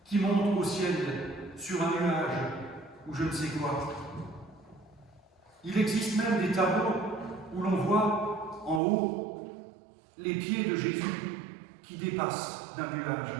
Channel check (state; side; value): drops out; left; at 8.8 s